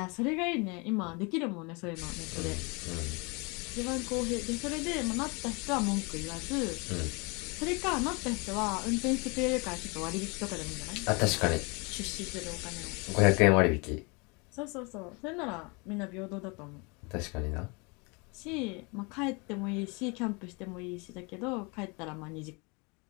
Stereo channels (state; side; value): quieter; right; 30.1 dB